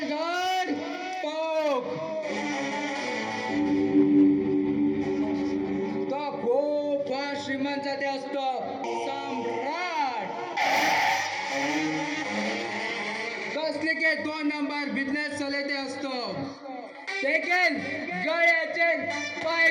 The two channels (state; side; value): identical; both; correlation 1.00